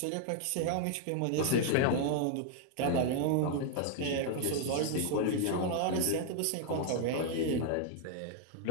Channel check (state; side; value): different; both; correlation 0.00